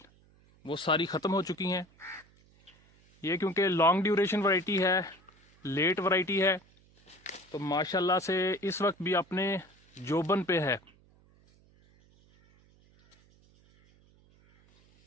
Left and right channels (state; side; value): noise; right; hum, 30 dB below the sound